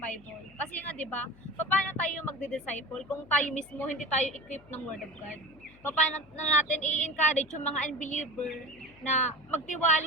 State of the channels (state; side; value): noise; left; hum, 25 dB below the sound